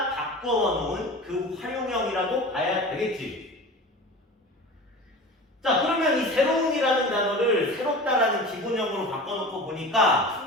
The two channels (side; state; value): both; normal; correlation 0.35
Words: 바꿔 놓은 그 활용형이라고 봐야 되겠지. 자, 그러면 이 새로운이라는 단어를 새롭다라는 기본형으로 바꿔놓고 보니까